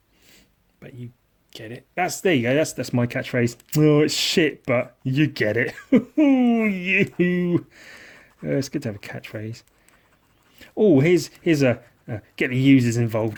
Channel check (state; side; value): identical; both; correlation 1.00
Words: But you get it. There you go. That's my catchphrase. Oh, it's shit, but you get it. You. It's good to have a catchphrase. Oh, here's a get the users